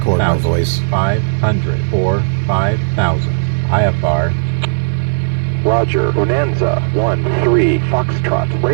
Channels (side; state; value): left; silent; digital silence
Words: my voice. 500 for 5,000. IFR. Roger, Bonanza 13 Foxtrot,